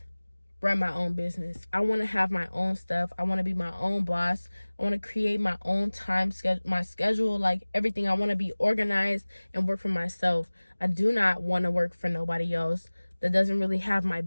run my own business. I want to have my own stuff. I want to be my own boss. I want to create my own time schedule, my schedule, like everything. I want to be organized and work for myself. I do not want to work for nobody else that doesn't really have my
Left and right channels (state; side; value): inverted; both; correlation -1.00